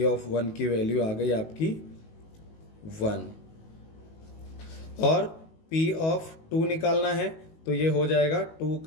ऑफ वन की वैल्यू आ गई आपकी वन। और पी ऑफ टू निकालना है, तो ये हो जाएगा टू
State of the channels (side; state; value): right; late; 19 ms